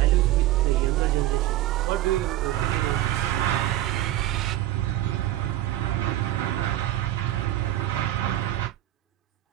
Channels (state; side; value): quieter; left; 14.4 dB